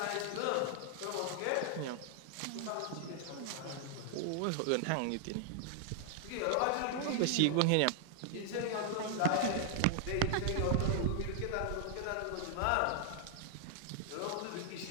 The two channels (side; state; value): both; different; correlation 0.00